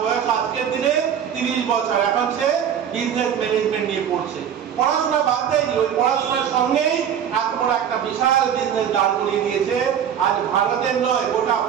বয়স আজকের দিনে 30 বছর। এখন সে বিজনেস ম্যানেজমেন্ট নিয়ে পড়ছে। পড়াশোনা বাদ দেয়নি, ওই পড়াশোনার সঙ্গেই এত বড় একটা বিশাল বিজনেস দাঁড় করিয়ে দিয়েছে। আজ ভারতের নয়, গোটা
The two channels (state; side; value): quieter; left; 8.8 dB